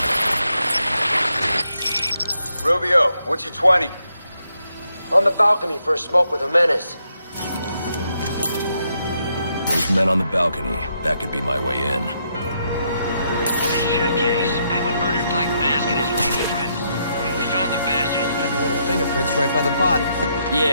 Rubio, what's your 20? On the balcony for a smoke with a menace. Those men on the balcony, that could be my way in. Shit case. Penguin murdered Black Mask and his lady friend. We found the bastards. Got little fingerprints right by the body.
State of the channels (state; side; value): inverted; both; correlation -0.78